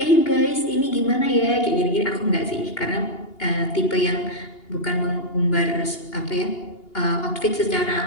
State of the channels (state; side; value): late; right; 2.8 ms